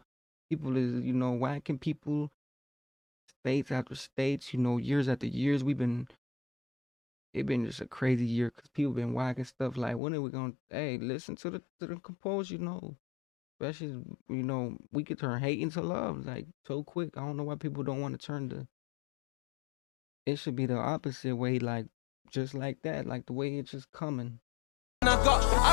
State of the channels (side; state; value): right; drops out; at 10.0 s